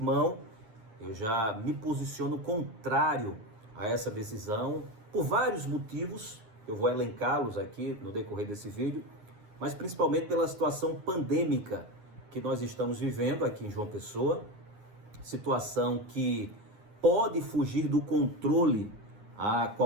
eu já me posiciono contrário a essa decisão por vários motivos, eu vou elencá-los aqui no decorrer desse vídeo, mas principalmente pela situação pandêmica que nós estamos vivendo aqui em João Pessoa, situação que pode fugir do controle a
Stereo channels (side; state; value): left; late; 9.7 ms